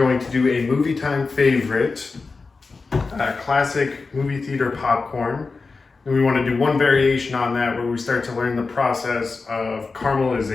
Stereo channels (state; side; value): quieter; right; 4.2 dB